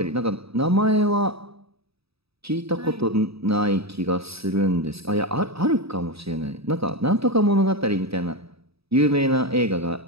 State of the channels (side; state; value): left; late; 0.77 ms